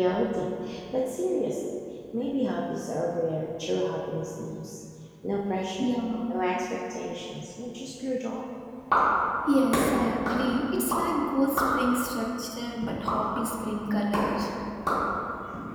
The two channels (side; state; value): both; identical; correlation 1.00